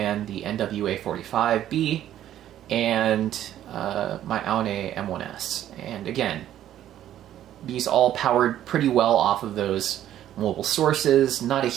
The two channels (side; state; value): left; quieter; 11.8 dB